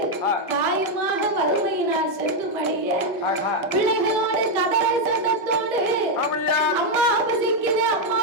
பிள்ளைகளோடு கதறல் சத்தத்தோடு அம்மா பசிக்குதே அம்மா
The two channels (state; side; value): normal; both; correlation 0.02